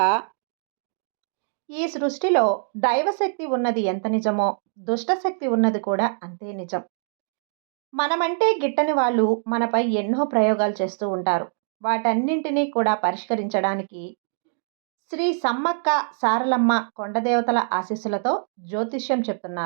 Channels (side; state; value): left; silent; digital silence